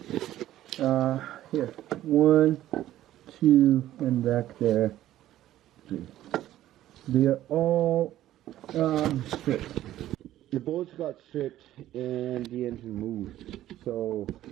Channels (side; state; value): left; quieter; 13.5 dB